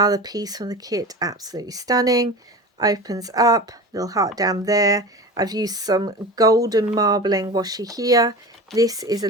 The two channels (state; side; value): normal; both; correlation 0.31